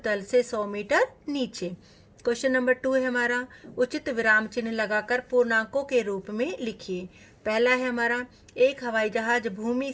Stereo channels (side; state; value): both; identical; correlation 1.00